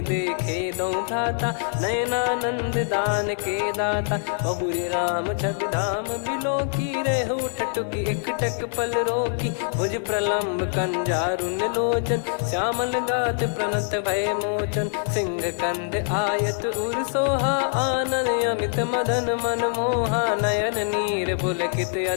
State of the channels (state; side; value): silent; right; digital silence